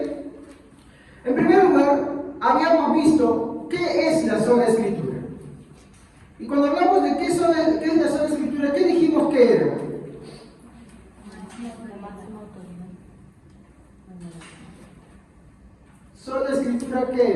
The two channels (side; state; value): both; identical; correlation 1.00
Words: En primer lugar, habíamos visto qué es la sola Escritura. Y cuando hablamos de qué es la sola Escritura, ¿qué dijimos que era? ¿Sola Escritura